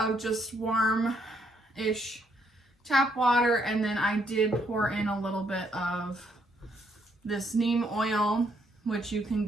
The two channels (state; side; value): normal; both; correlation 0.72